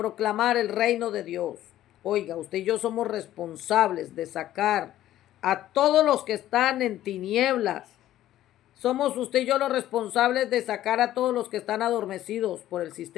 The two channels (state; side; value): quieter; right; 13.3 dB